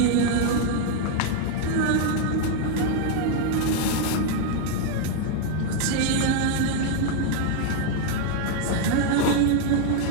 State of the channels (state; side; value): different; both; correlation 0.00